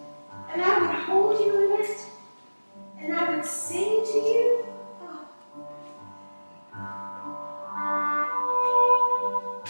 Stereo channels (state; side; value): inverted; both; correlation -1.00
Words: And I would hold you in it. And I would sing to you.